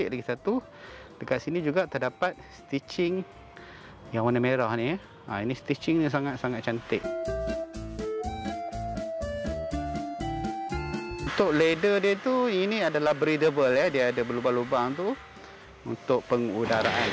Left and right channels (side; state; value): both; identical; correlation 1.00